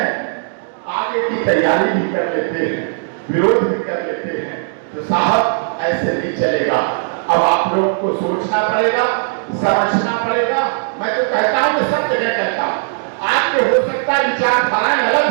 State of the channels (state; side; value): silent; left; 63 dB below the other